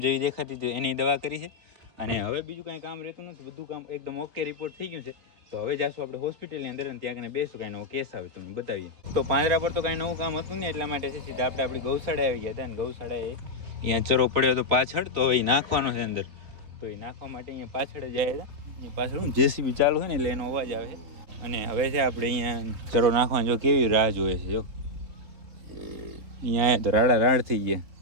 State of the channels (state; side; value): late; left; 3.6 ms